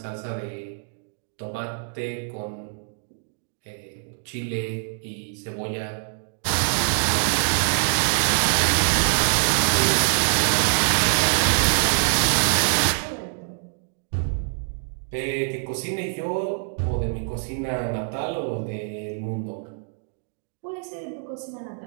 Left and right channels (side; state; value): left; silent; digital silence